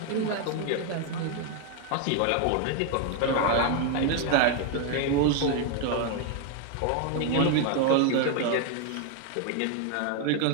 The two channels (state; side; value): different; both; correlation 0.01